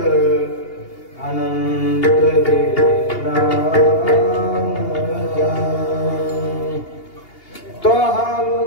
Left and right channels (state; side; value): late; right; 2.8 ms